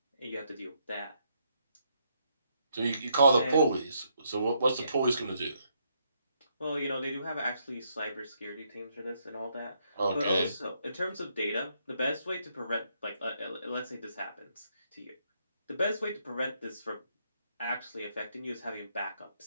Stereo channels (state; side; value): inverted; both; correlation -0.75